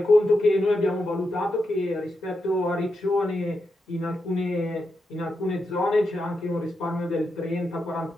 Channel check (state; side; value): normal; both; correlation 0.86